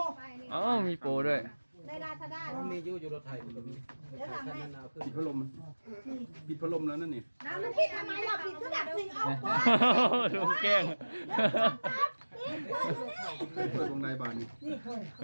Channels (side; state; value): both; inverted; correlation -1.00